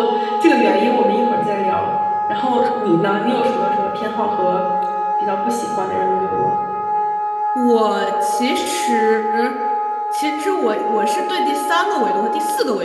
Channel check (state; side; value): identical; both; correlation 1.00